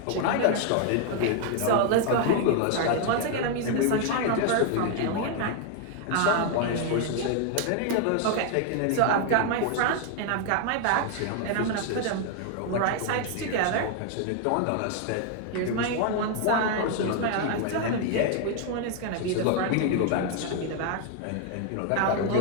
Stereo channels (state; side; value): different; both; correlation 0.00